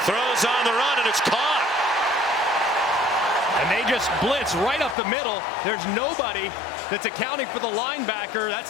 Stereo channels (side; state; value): right; drops out; at 5.0 s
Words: Throws on the run, and it's caught. And they just blitz right up the middle. There's nobody that's accounting for the linebacker.